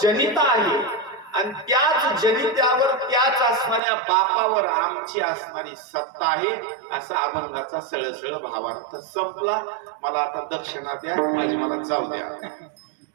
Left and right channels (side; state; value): left; drops out; at 3.8 s